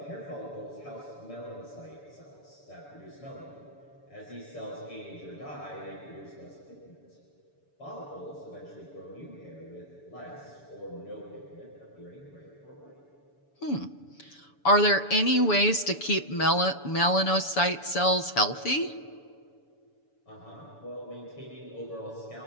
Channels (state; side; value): late; right; 7.0 ms